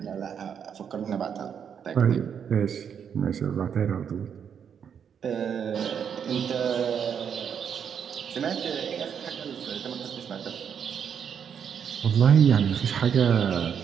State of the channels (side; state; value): left; quieter; 7.7 dB